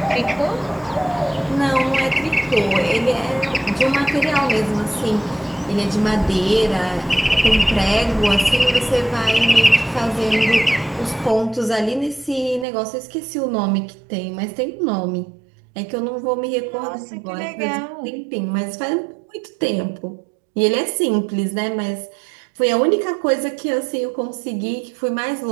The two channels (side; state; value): left; drops out; at 12.7 s